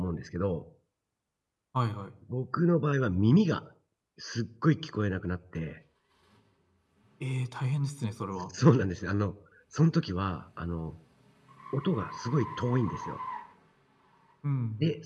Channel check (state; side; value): identical; both; correlation 1.00